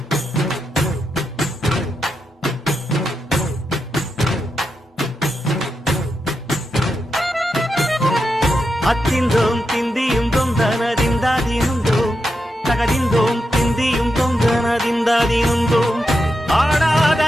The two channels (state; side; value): normal; both; correlation 0.86